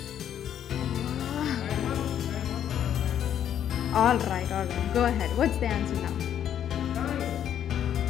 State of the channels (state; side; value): quieter; right; 9.9 dB